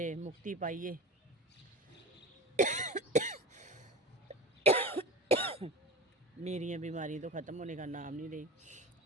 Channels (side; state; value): both; normal; correlation 0.30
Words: मुक्ति पाइए। मेरी बीमारी तो ख़त्म होने का नाम नहीं रही।